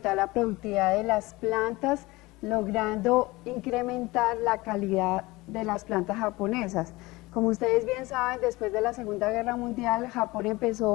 la productividad de las plantas, logrando incrementar la calidad de las plantas japonesas. Como ustedes bien saben, después de la Segunda Guerra Mundial, Japón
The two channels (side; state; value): right; quieter; 21.2 dB